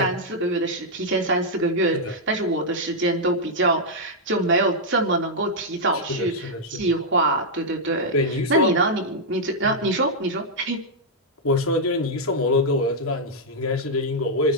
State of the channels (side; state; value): both; normal; correlation -0.05